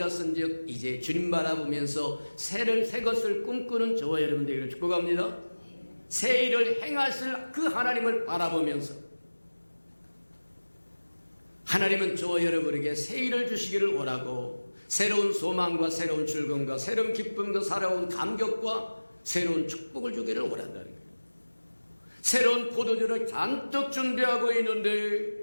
이제 주님 바라보면서 새 것을 꿈꾸는 저와 여러분들에게 축복합니다. 새 일을 행하실 그 하나님을 바라보면서 하나님은 저와 여러분에게 새 일을 주시기를 원하고 새로운 소망과 새로운 즐거움과 새로운 기쁨과 새로운 감격과 새로운 축복을 주기를 원한다는 거예요. 새로운 포도주를 잔뜩 준비하고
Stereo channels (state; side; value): inverted; both; correlation -1.00